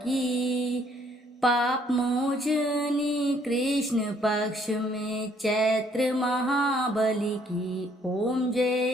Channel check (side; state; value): both; normal; correlation 0.65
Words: पाप मोचनी कृष्ण पक्ष में चैत्र महाबली की। ओम जय